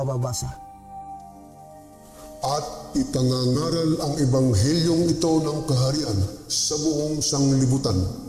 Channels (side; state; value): both; identical; correlation 1.00